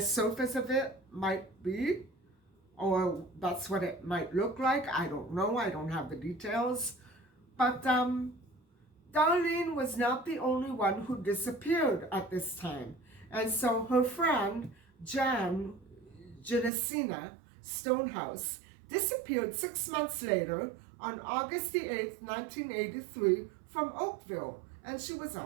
of it might be, or that's what it might look like. I don't know. I don't have the details. But Darlene was not the only one who disappeared at this time. And so her friend, Jinisina Stonehouse, disappeared 6 months later on August the 8th, 1983 from Oakville. And she was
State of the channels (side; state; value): left; drops out; at 16.7 s